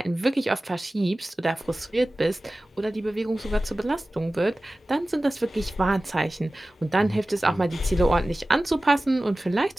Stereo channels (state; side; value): normal; both; correlation 0.96